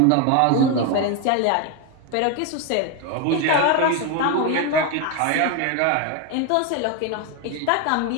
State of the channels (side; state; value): both; different; correlation 0.02